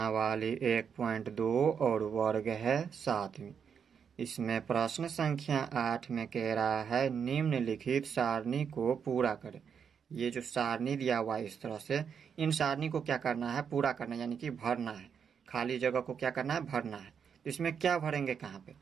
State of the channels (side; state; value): left; quieter; 7.0 dB